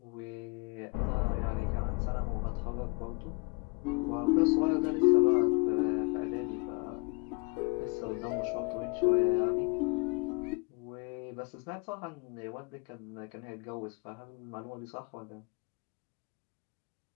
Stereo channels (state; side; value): quieter; right; 28.6 dB